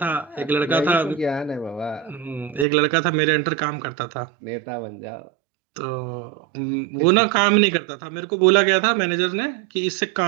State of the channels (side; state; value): left; drops out; at 2.7 s